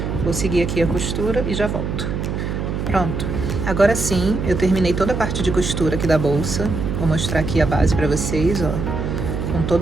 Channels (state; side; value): noise; right; hum, 3 dB below the sound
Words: Vou seguir aqui a costura e já volto. Pronto. Agora sim, eu terminei toda a parte de costura aqui da bolsa. Vou mostrar aqui a base pra vocês, ó, com